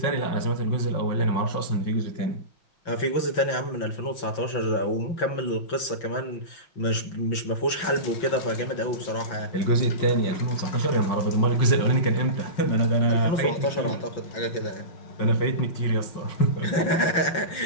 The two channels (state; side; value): late; right; 5.9 ms